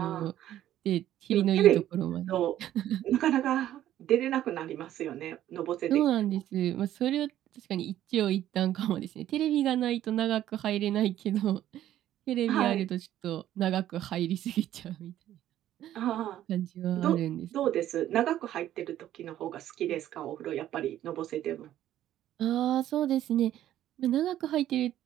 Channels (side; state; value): left; quieter; 12.4 dB